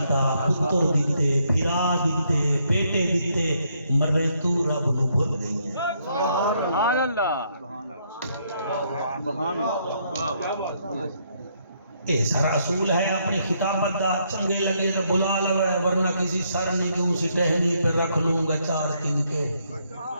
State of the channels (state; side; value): inverted; both; correlation -0.73